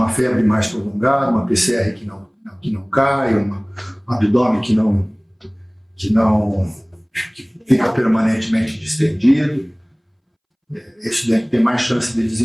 febre mais prolongada, uma PCR que não cai, um abdômen que fica permanentemente distendido. Esse doente tem mais chance de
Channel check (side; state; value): both; identical; correlation 1.00